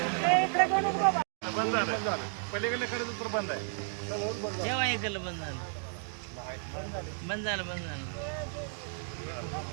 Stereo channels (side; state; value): left; silent; 56 dB below the other